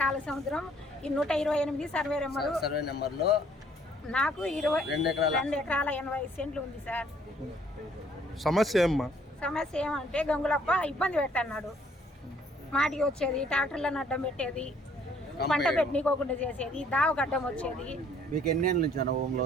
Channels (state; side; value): normal; both; correlation 0.62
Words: కాలసముద్రం ఈ 128 సర్వే నెంబర్లో నాకు 2 ఎకరాల 80 సెంట్లు ఉంది సార్. సమస్య ఏమంటే గంగులప్ప ఇబ్బంది పెట్టన్నాడు. మాటికి వచ్చేది, ట్రాక్టర్లను అడ్డం పెట్టేది, పంట పెట్టనీకోకుండా చేసేది, దావగడ్డం వచ్చేది. మీకు ఎన్ని ఏళ్ళ నుంచి అనుభవంలో